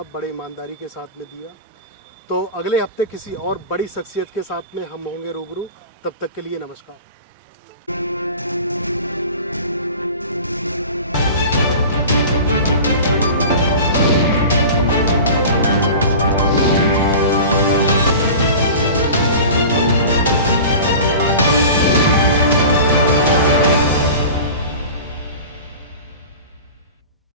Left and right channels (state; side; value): inverted; both; correlation -0.37